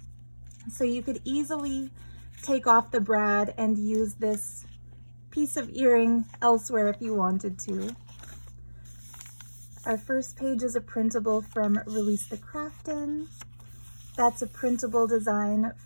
So you could easily take off the brad and use this piece of earring elsewhere if you wanted to. Our first page is a printable from Release the Craftin. That's a printable design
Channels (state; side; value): inverted; both; correlation -1.00